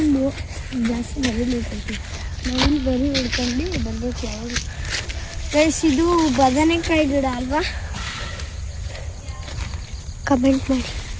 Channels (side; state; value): both; identical; correlation 1.00